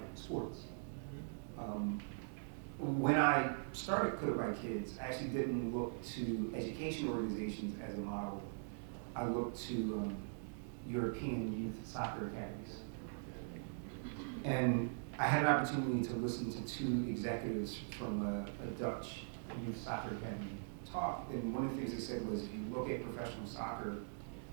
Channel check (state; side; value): silent; left; digital silence